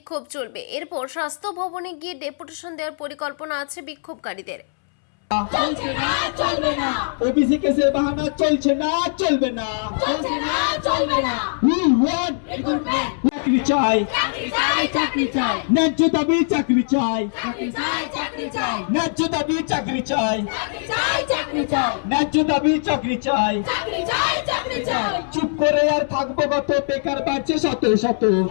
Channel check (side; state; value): right; silent; 65 dB below the other